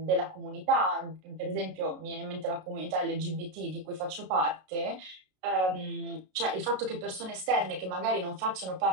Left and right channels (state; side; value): late; left; 32 ms